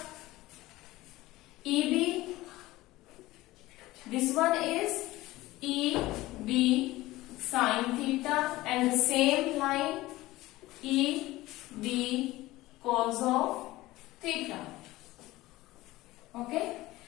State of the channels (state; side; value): quieter; right; 18.1 dB